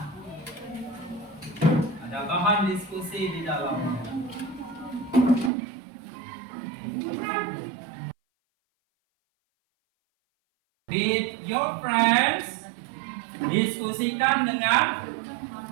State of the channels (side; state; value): left; drops out; at 5.5 s